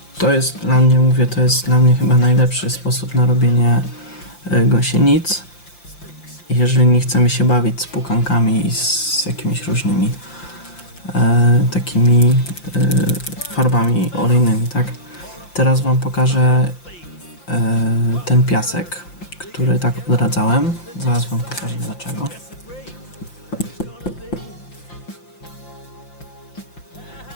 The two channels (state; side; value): late; right; 5.8 ms